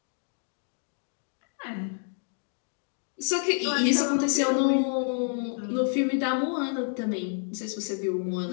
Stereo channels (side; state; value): right; silent; 59 dB below the other